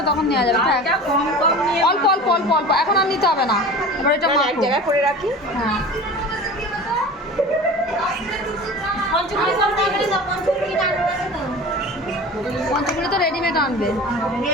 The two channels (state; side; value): normal; both; correlation 0.36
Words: তখন নেওয়া যাবে। অল্প এখন আর নিতে হবে না। এবার এটা এক জায়গায় করে রাখি। হ্যাঁ, পঞ্চমুড়ি তো রেডিমেড আনবে।